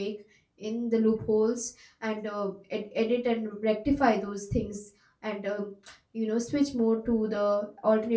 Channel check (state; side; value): identical; both; correlation 1.00